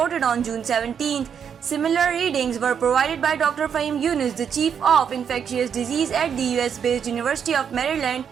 on June 17th. Similar readings were provided by Dr. Fahim Yunus, the chief of infectious disease at the US-based University of Maryland.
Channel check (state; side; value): quieter; left; 7.6 dB